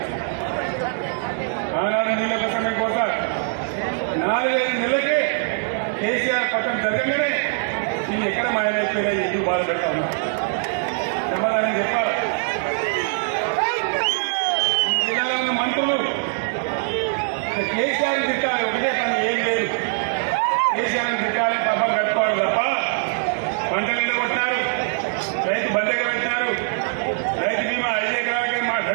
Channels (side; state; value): left; silent; digital silence